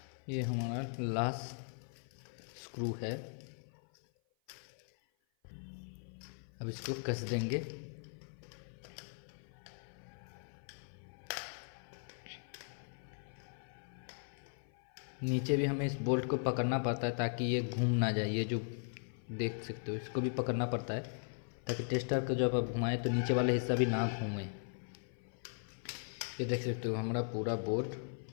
ये हमारा लास्ट स्क्रू है। अब इसको कस देंगे। नीचे भी हमें इस बोल्ट को पकड़ना पड़ता है ताकि ये घूम ना जाए। ये जो देख सकते हो, इसको भी पकड़ना पड़ता है ताकि टेस्टर को जब आप घुमाएं तो नीचे वाला हिस्सा भी ना घूमे। ये देख सकते हो हमारा पूरा बोर्ड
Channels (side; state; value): right; silent; 52 dB below the other